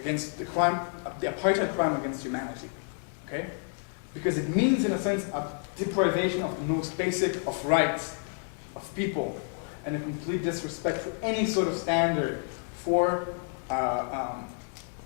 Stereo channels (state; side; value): silent; right; 58 dB below the other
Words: crime against humanity. Okay, because it means, in a sense, a deprivation of the most basic of rights of people, and a complete disrespect for any sort of standard for